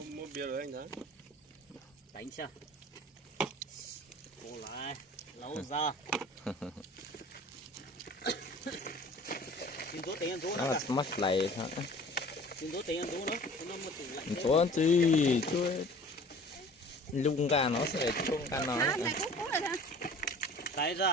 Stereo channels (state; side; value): normal; both; correlation 0.46